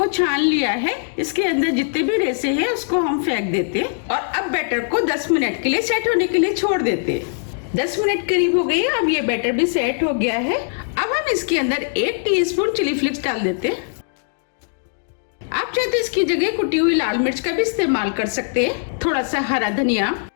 छान लिया है। इसके अंदर जितने भी रेसे हैं उसको हम फेंक देते हैं और अब बैटर को 10 मिनट के लिए सेट होने के लिए छोड़ देते हैं। 10 मिनट करीब हो गई। अब ये बैटर भी सेट हो गया है। अब हम इसके अंदर 1 टीस्पून चिली फ्लेक्स डाल देते हैं। आप चाहे तो इसकी जगह कुटी हुई लाल मिर्च का भी इस्तेमाल कर सकते हैं। थोड़ा सा हरा धनिया।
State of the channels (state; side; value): silent; right; digital silence